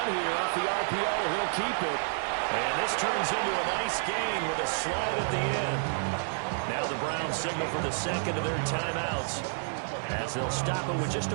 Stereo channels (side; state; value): left; silent; digital silence